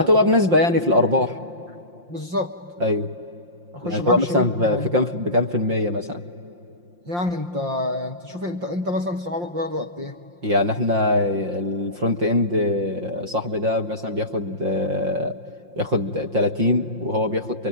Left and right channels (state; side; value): late; left; 5.7 ms